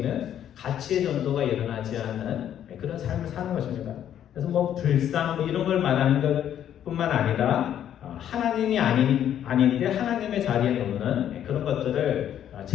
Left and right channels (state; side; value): quieter; right; 10.3 dB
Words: 가치의 전도가 일어나지 않는 그런 삶을 사는 것입니다. 그래서 뭐 불상 이런 걸 말하는 것뿐만 아니라 하나님이 아닌데 하나님의 자리에 놓는 그런 것들을